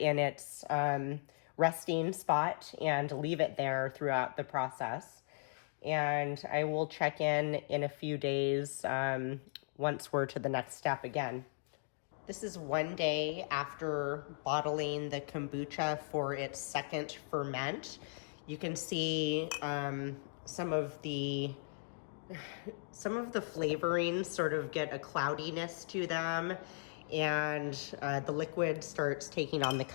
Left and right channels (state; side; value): silent; right; digital silence